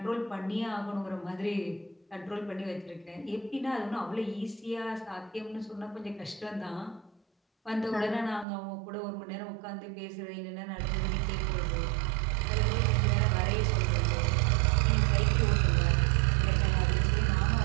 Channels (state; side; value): drops out; left; at 8.5 s